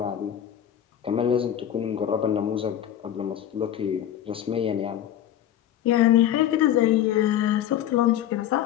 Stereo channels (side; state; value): right; quieter; 10.9 dB